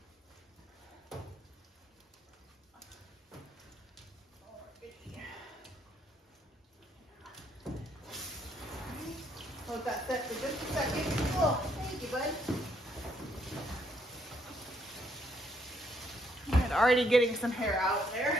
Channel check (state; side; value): normal; both; correlation 0.71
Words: Hold that set for just a second. Oh, thank you, bud. And already getting some hair out